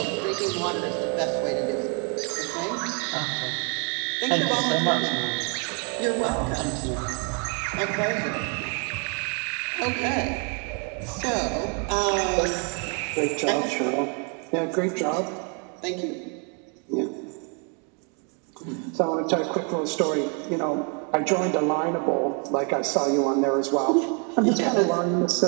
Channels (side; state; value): left; quieter; 37.7 dB